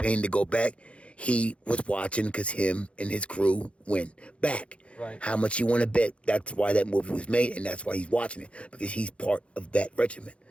to go back, he was watching because him and his crew went back. Right. How much you want to bet? That's why that movie was made, and that's why he's watching it, because he's part of that regiment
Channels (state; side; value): late; right; 0.061 ms